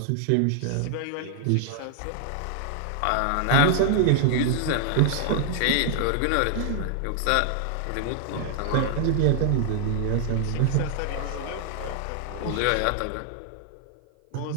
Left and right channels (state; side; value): different; both; correlation 0.00